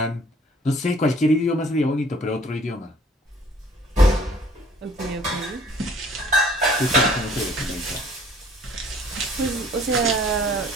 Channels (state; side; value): normal; both; correlation 0.55